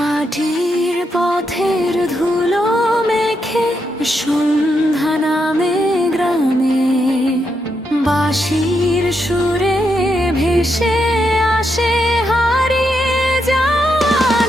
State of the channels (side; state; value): both; normal; correlation 0.82